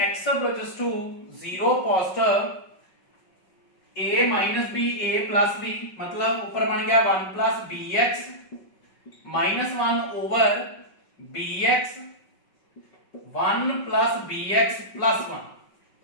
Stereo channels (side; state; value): right; late; 5.3 ms